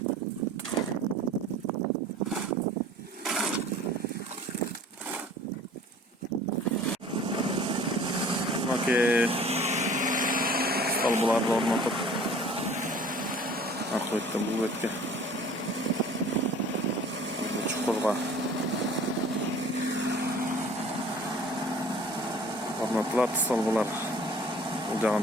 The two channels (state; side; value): normal; both; correlation 0.48